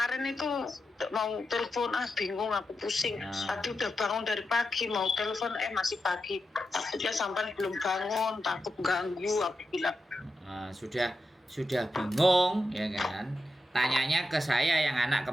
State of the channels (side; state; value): both; normal; correlation 0.88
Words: itu mau telepon bingung aku pusing. Tadi udah bangun dari pagi mau telepon masih pagi. Takutnya sampai belum bangun, takut ganggu aku bilang. Sudah bingung ya kan? Tanyanya ke saya yang anak